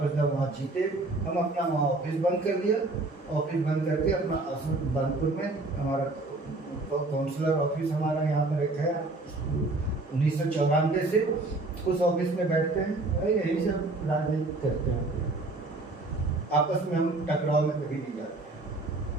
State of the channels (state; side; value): quieter; left; 3.1 dB